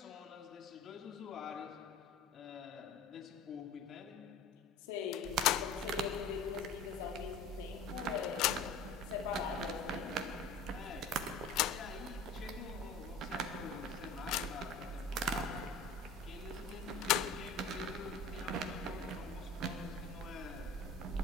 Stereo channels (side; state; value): right; quieter; 3.4 dB